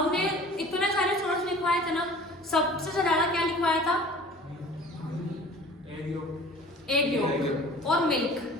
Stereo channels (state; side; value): normal; both; correlation 0.45